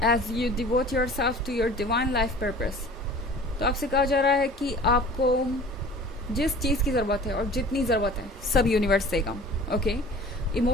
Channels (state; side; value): normal; both; correlation 0.44